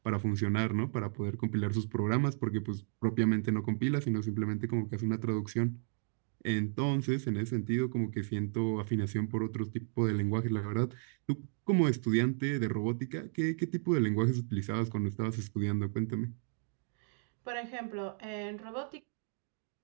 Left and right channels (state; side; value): silent; left; digital silence